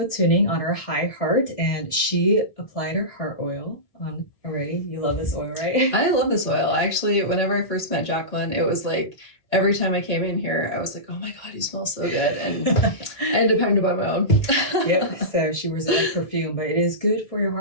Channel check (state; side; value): late; right; 1.6 ms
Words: tuning on her high heart, and she applied her heart oil on already. You love this oil, right? I love this oil. Actually, whenever I first met Jacqueline, it was like every time I came in here, I was like, oh my God, you smell so good. And I ended up having to buy my own. Yep, so she wears it like perfume, but it is good for your